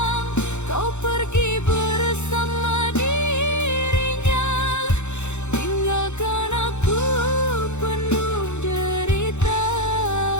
Kau pergi bersama dirinya, tinggalkan aku penuh derita.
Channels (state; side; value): late; right; 0.83 ms